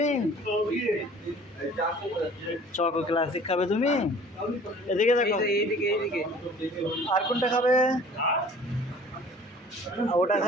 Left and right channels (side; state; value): both; normal; correlation 0.49